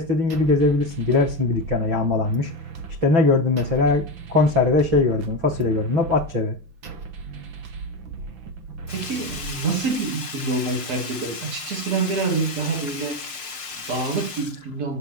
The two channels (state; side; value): late; left; 6.0 ms